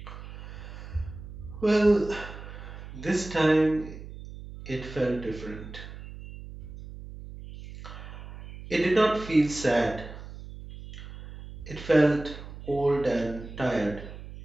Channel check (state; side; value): noise; right; hum, 13 dB below the sound